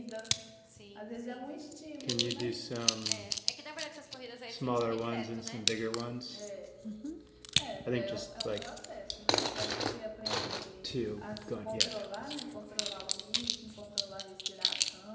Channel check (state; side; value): identical; both; correlation 1.00